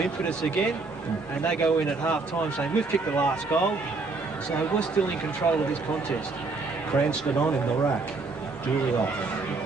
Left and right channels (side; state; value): left; quieter; 3.8 dB